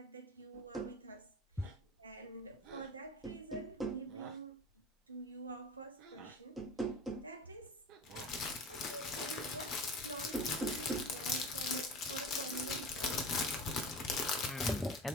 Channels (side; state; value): both; normal; correlation 0.35